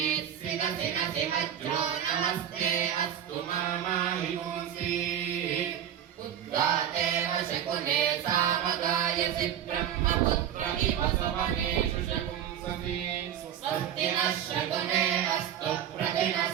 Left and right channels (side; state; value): left; quieter; 9.9 dB